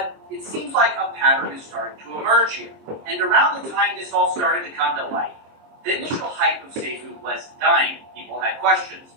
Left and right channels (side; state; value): left; late; 23 ms